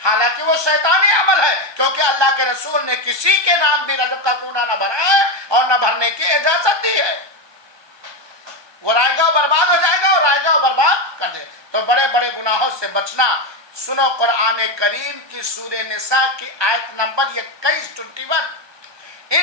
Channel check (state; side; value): late; left; 1.2 ms